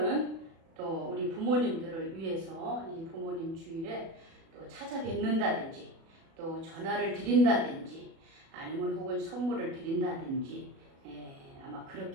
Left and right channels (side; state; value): left; late; 36 ms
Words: 또 우리 부모님들을 위해서 이 부모님 주일에 또 찾아뵙는다든지 또 전화를 드린다든지 아니면 혹은 선물을 드린다든지 아마